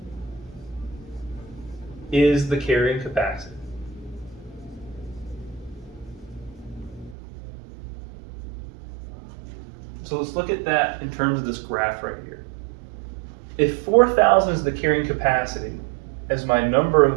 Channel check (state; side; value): drops out; left; at 7.2 s